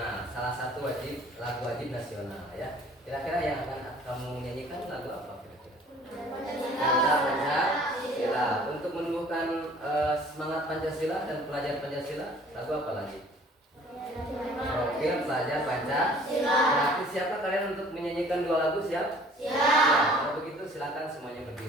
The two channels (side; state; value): both; normal; correlation 0.52